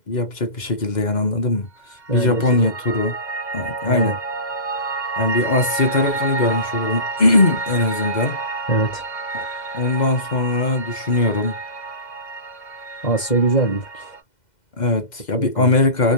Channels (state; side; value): late; right; 2.1 ms